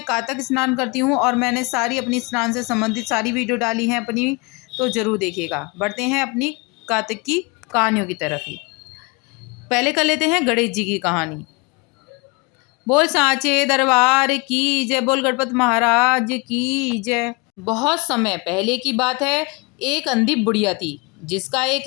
कातक स्नान करती हूँ और मैंने सारी अपनी स्नान से संबंधित सारी वीडियो डाली हैं अपनी, तो जरूर देखिएगा। बढ़ते हैं अपनी कातक की कहानियों की तरफ ही। पहले कर लेते हैं गणेश जी की कहानी। बोल सांचे दरबार की जय, बोल गणपत महाराज की जय। बहुत समय पहले की बात है। एक अंधी बुढ़िया थी, जिसका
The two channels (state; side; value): quieter; right; 28.5 dB